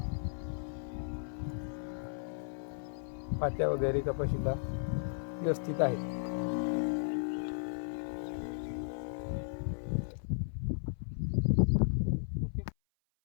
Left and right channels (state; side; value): silent; right; 54 dB below the other